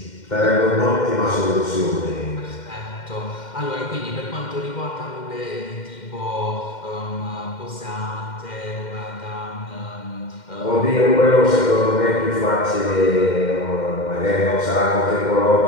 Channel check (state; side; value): late; right; 2.1 ms